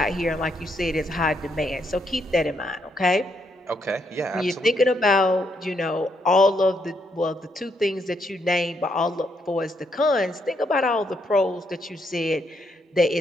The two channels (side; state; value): both; normal; correlation 0.76